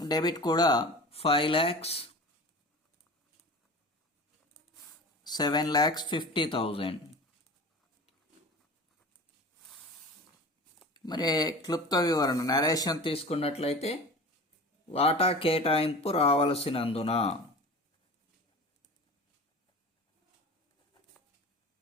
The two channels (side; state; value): both; normal; correlation 0.36